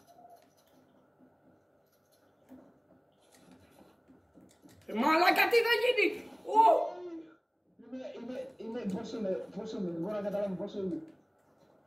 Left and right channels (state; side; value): identical; both; correlation 1.00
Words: Μαλάκα, τι θα γίνει! Πόσο είμαι, δεν μπορώ να καταλάβω πόσο είμαι.